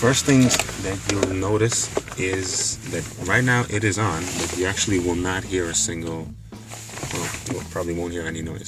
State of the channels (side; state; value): both; identical; correlation 1.00